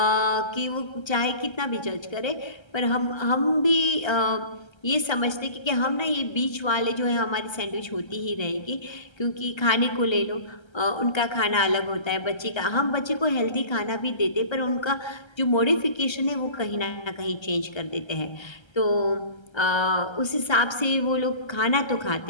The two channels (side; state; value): right; late; 1.3 ms